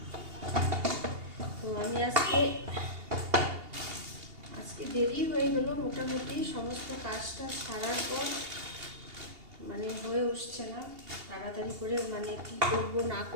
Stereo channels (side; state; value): left; late; 2.8 ms